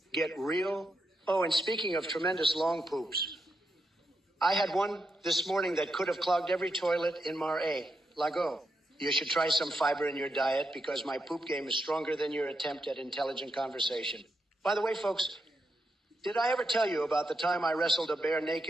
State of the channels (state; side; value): normal; both; correlation 0.84